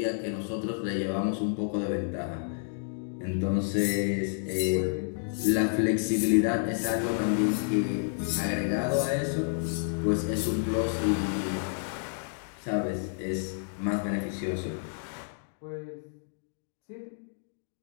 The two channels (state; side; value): silent; right; digital silence